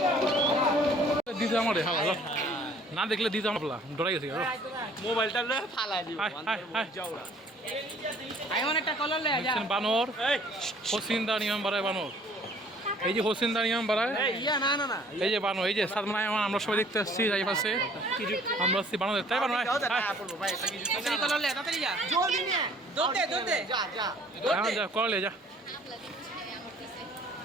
দিতে আমার হালা না দেখলে দিতে আমার ডরাই গেছে। মোবাইলটা ফালাই দিব বানর হোসিন্দা নিয়ম বাড়ায়, বানর এই যে হোসিন্দা নিয়ম বাড়ায়, এই যে বানর, এই যে সাদমানায় আমরা সবাই দেখতে আসছি এই পাশে, আমরা আসছি বানর তাই বানর যা করলে যা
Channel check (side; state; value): both; normal; correlation 0.56